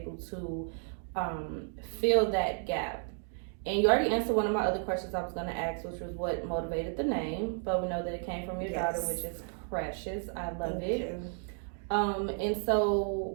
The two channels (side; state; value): left; silent; 56 dB below the other